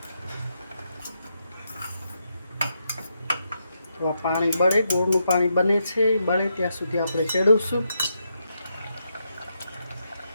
તો આ પાણી બળે, ગોળનું પાણી બને છે, બળે ત્યાં સુધી આપણે ચડવશું.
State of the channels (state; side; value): inverted; both; correlation -0.82